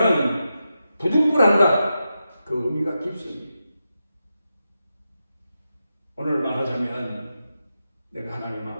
부득불한다. 그 의미가 깊습니다. 오늘 말하자면 내가 하나님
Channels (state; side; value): inverted; both; correlation -0.88